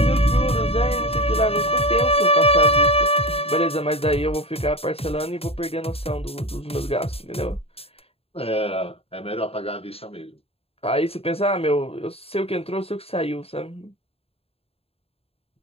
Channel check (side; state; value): right; late; 0.28 ms